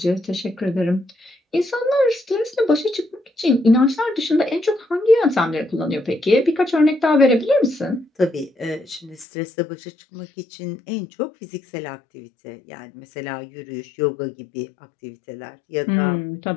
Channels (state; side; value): drops out; right; at 9.2 s